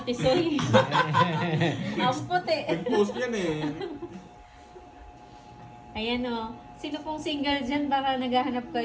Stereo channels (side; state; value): both; identical; correlation 1.00